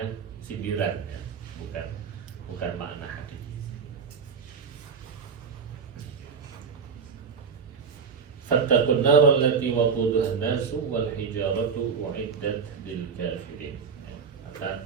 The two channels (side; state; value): left; quieter; 6.0 dB